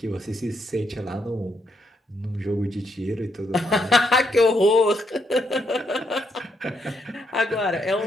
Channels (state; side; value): normal; both; correlation 0.77